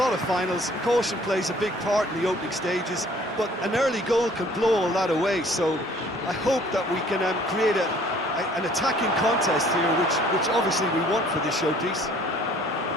of finals, caution plays a big part in the opening stages, but an early goal can blow all that away, so I hope that we can create an attacking contest here, which obviously we want for this showpiece.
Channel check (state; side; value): normal; both; correlation 0.56